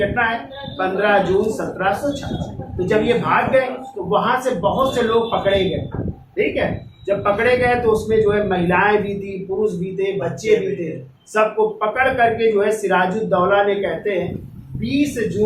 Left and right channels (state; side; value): identical; both; correlation 1.00